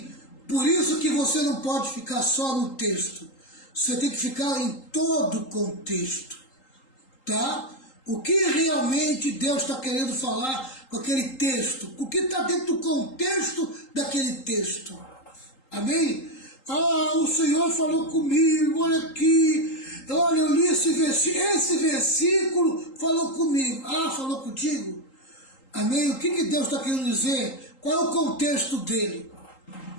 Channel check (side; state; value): right; late; 3.8 ms